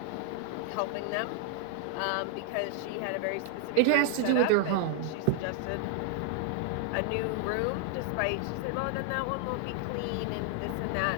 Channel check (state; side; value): different; both; correlation 0.00